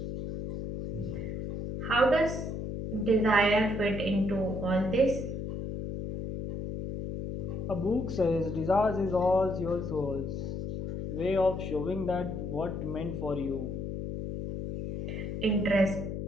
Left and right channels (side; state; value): left; noise; hum, 4 dB below the sound